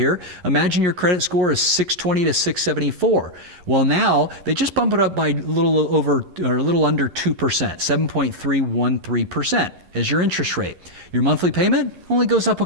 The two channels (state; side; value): late; left; 11 ms